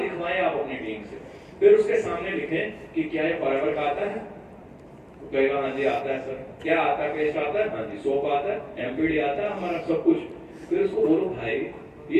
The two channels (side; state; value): both; identical; correlation 1.00